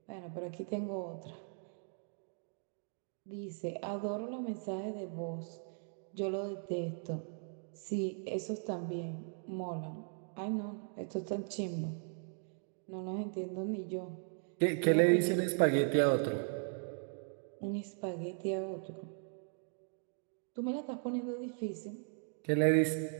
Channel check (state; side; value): silent; left; 52 dB below the other